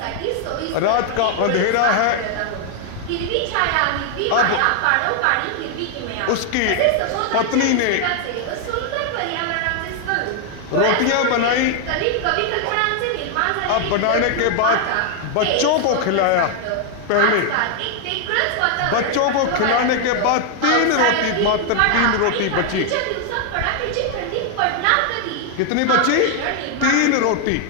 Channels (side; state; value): both; different; correlation 0.00